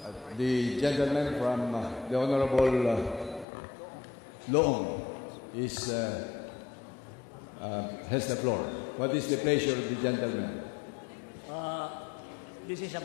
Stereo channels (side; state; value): right; drops out; at 3.5 s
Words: The gentleman from the Honorable Loong has the floor. What is the pleasure of the gentleman? This is